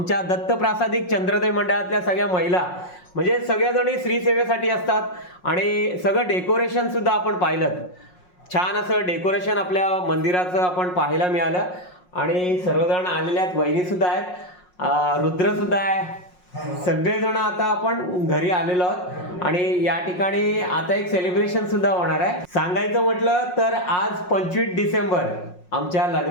दत्तप्रासादिक चंद्रोदय मंडळातल्या सगळ्या महिला म्हणजे सगळ्याजणी श्री सेवेसाठी असतात आणि सगळं डेकोरेशन सुद्धा आपण पाहिलं. छान असं डेकोरेशन आपल्या मंदिराचं आपण पाहायला मिळालं आणि सर्वजण आलेले आहेत. वहिनी सुद्धा आहेत, रुद्र सुद्धा आहे. सगळेजण आता आपण घरी आलेलो आहोत आणि या ठिकाणी आता एक सेलिब्रेशन सुद्धा होणार आहे. सांगायचं म्हटलं तर आज 25 डिसेंबर आमच्या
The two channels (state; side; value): late; right; 5.5 ms